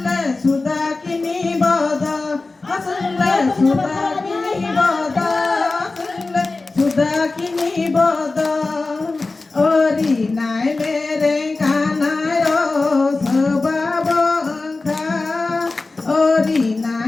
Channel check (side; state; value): right; quieter; 3.5 dB